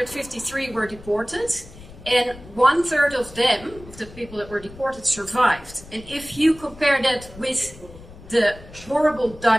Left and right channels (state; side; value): noise; left; rumble, 18 dB below the sound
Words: were deported, and 1/3 of them, of the people that were deported, survived. And if you compare that with the horrible